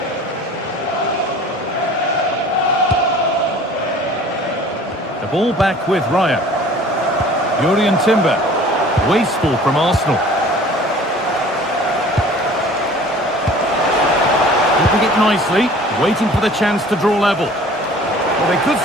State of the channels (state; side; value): normal; both; correlation 0.47